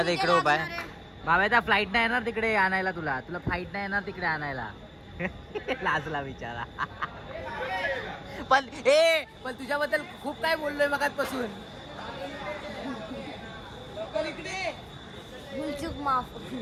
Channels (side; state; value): both; identical; correlation 1.00